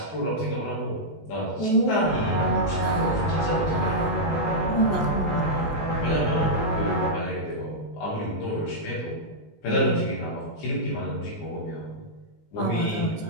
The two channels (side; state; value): right; late; 19 ms